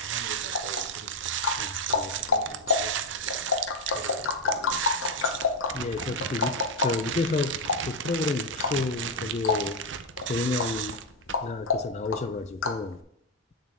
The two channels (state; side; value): normal; both; correlation 0.02